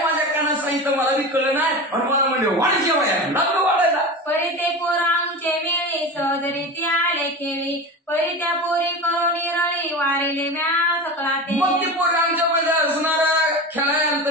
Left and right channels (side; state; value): both; normal; correlation 0.28